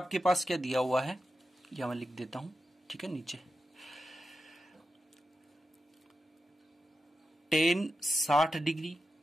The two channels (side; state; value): both; normal; correlation 0.90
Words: पास क्या दिया हुआ है, यह मैं लिख देता हूं। ठीक है, नीचे tan 60 degree